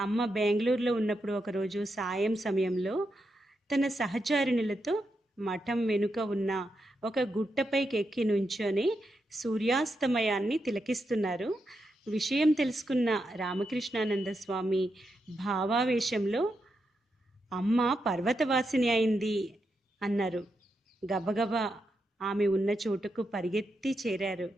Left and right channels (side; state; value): both; normal; correlation 0.84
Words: బెంగళూరులో ఉన్నప్పుడు ఒకరోజు సాయం సమయంలో తన సహచారిణులతో మఠం వెనుక ఉన్న ఒక గుట్టపైకి ఎక్కి నుంచొని సూర్యాస్తమయాన్ని తిలకిస్తున్నారు. విషయం తెలుసుకున్న రామకృష్ణానంద స్వామి భావావేశంలో అమ్మ పర్వతవాసిని అయింది అన్నారు. గబగబా ఆమె ఉన్న చోటుకు పరిగెత్తి చేరారు.